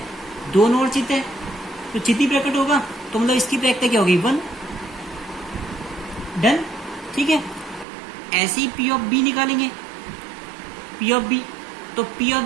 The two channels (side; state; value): left; drops out; at 7.9 s